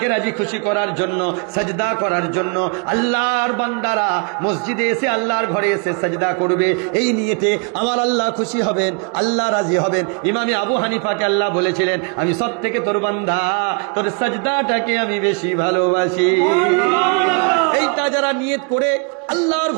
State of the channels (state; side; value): quieter; left; 36.4 dB